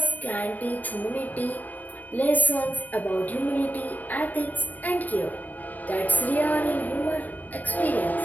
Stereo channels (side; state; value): right; late; 0.082 ms